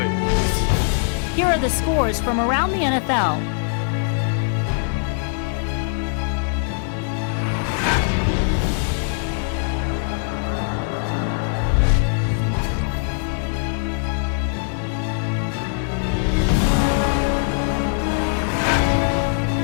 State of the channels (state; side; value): silent; right; digital silence